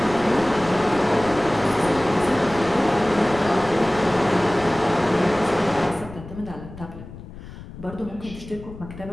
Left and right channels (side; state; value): left; noise; rumble, 15 dB below the sound